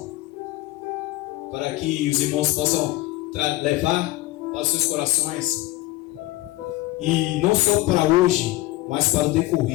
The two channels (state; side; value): quieter; right; 17.7 dB